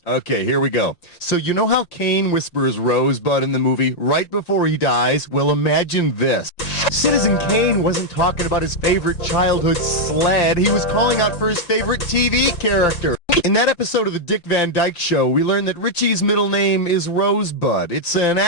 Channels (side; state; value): right; late; 5.8 ms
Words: Okay, here we go. So you know how Kane whispers Rosebud in the movie right before he dies? Well, imagine this. Citizen Kane wasn't talking about his favorite childhood sled. He was calling out for his favorite TV character. In that episode of the Dick Van Dyke Show, we learned that Richie's middle name is Rosebud. It's an